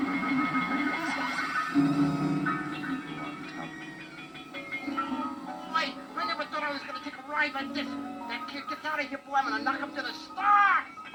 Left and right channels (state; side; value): identical; both; correlation 1.00